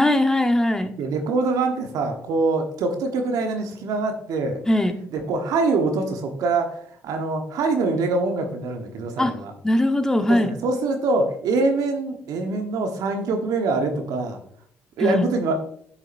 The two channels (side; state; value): both; normal; correlation 0.66